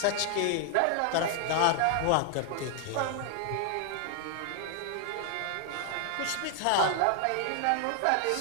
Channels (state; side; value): different; both; correlation 0.00